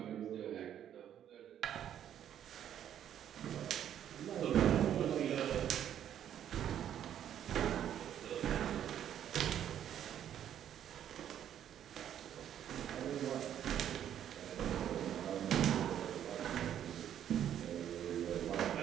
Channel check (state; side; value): quieter; left; 10.2 dB